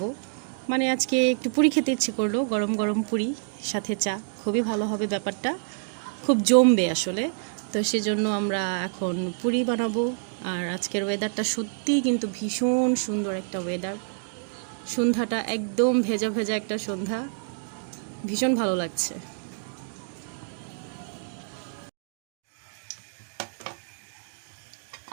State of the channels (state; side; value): silent; left; digital silence